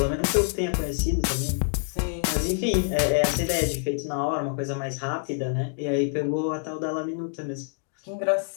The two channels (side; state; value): right; silent; digital silence